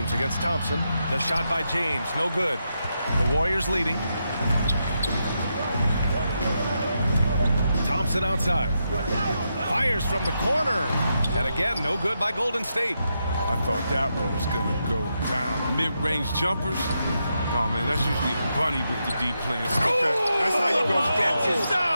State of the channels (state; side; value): inverted; both; correlation -0.84